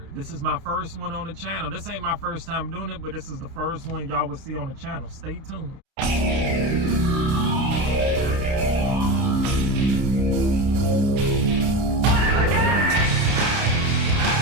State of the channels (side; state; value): left; late; 30 ms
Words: This is my first one on the channel. This ain't my first time doing it, but this is the first one y'all will see on the channel. Stay tuned.